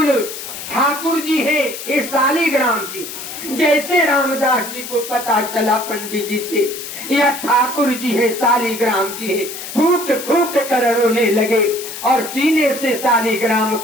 ठाकुर जी है, ये शालिग्राम जी। जैसे रामदास जी को पता चला पंडित जी से यह ठाकुर जी है, शालिग्राम जी है, फूट फूट कर रोने लगे, और सीने से शालिग्राम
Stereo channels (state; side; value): noise; left; hiss, 9 dB below the sound